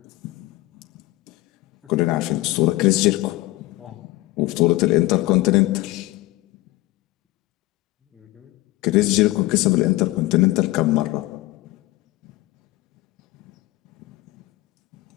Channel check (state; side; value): quieter; right; 19.0 dB